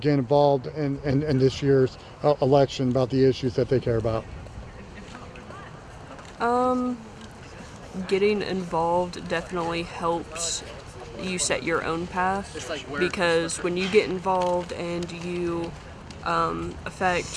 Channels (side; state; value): both; identical; correlation 1.00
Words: involved in this year's election, about the issues that they care about? Getting involved definitely helps you set your own path, because when you get involved and you